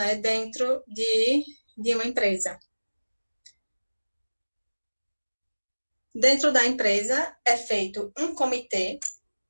dentro de uma empresa? Dentro da empresa é feito um comitê.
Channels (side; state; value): both; inverted; correlation -1.00